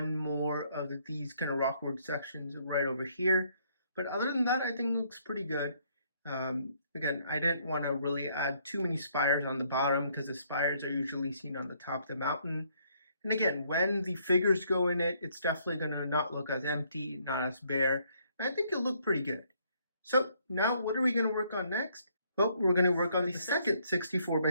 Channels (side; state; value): both; inverted; correlation -0.68